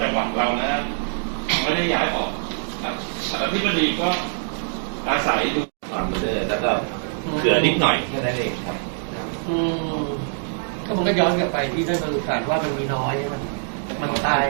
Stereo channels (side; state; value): left; silent; digital silence